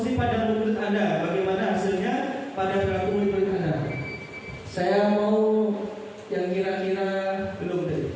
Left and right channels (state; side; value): identical; both; correlation 1.00